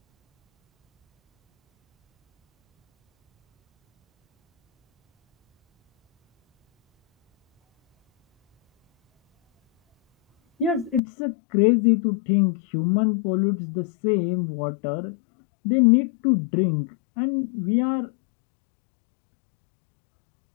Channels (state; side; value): drops out; right; at 11.0 s